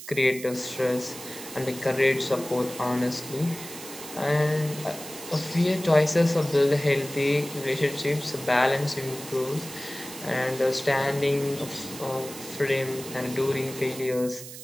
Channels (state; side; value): noise; right; hiss, 13 dB below the sound